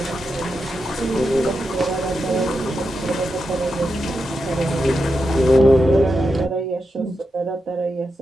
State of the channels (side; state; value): both; normal; correlation 0.87